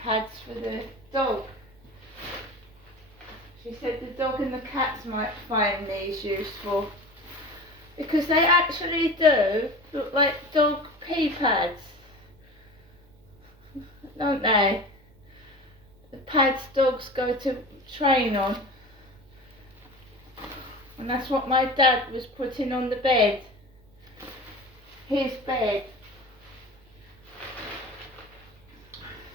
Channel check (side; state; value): right; noise; hum, 29 dB below the sound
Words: for the dog. She said the dog and the cats might find these useful, because they actually do look like dog pee pads, don't they? The pads dogs go to train on. And that's what my dad was putting on the bed. His bed.